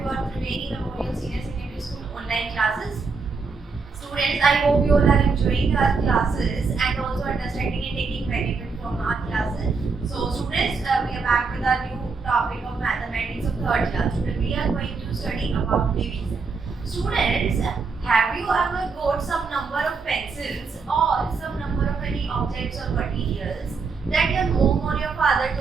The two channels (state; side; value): quieter; left; 4.6 dB